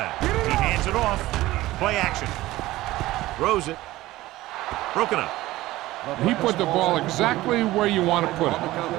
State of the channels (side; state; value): left; quieter; 17.2 dB